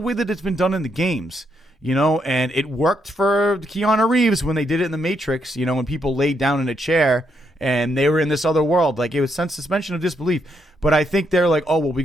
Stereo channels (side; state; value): both; normal; correlation 0.77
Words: that it's been done in the games, and it worked for Keanu Reeves when they did it in The Matrix, when people laid down in a chair and they were in this other world. Like, it was suspension of disbelief. But I think they're like, oh, well, we